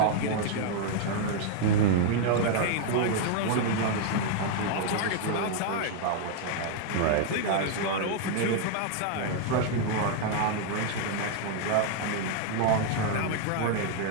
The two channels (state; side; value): different; both; correlation 0.00